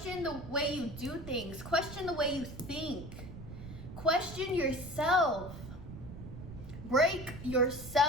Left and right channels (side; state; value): right; noise; rumble, 12 dB below the sound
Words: the way you do things. Question the way you think. Question yourself. Break